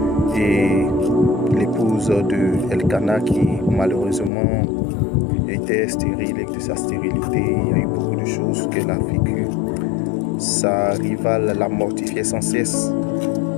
et l'épouse de Elkana qui malheureusement était stérile. Et de sa stérilité, il y a eu beaucoup de choses qu'elle a vécues. Sa rivale la mortifiait sans cesse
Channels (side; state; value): right; drops out; at 4.3 s